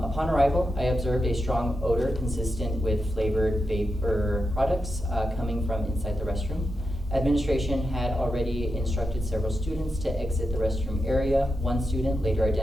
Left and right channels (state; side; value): normal; both; correlation 0.88